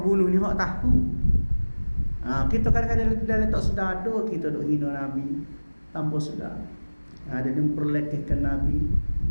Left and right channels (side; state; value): both; inverted; correlation -1.00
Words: ni hak tahu. Kita kadang-kadang dalam tak sedar ada kita duk hina Nabi tanpa sedar. Dia memperlekehkan Nabi.